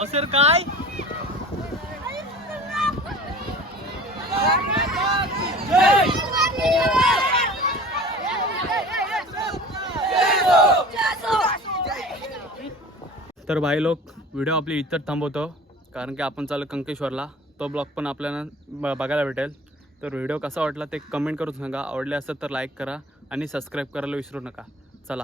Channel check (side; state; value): both; normal; correlation 0.41